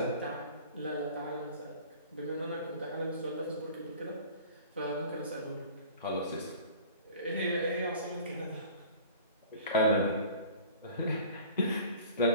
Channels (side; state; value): both; inverted; correlation -0.45